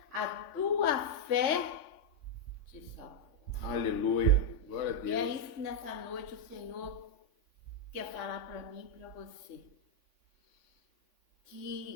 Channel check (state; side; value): late; right; 3.5 ms